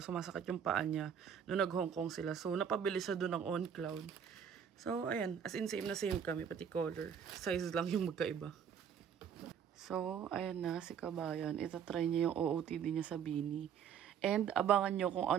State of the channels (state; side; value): quieter; left; 8.0 dB